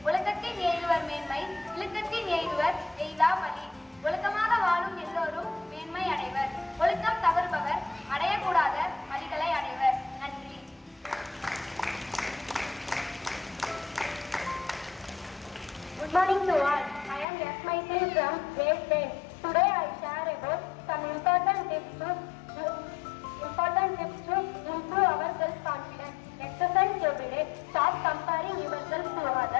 ஒழுக்கத்தின் எய்துவர் மேன்மை, இழுக்கத்தின் எய்துவர் எய்தா வழி. ஒழுக்கமாக வாழும் எல்லோரும் மேன்மை அடைவர். ஒழுக்கம் தவறுபவர் அடையக்கூடாத வழிகளை அடைவர். நன்றி. Good morning to all. I am S. Maitri from grade 10. Today I share about some important tips to improve our self-confidence. Exercise every day. Stop comparing yourself to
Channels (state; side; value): drops out; right; at 17.2 s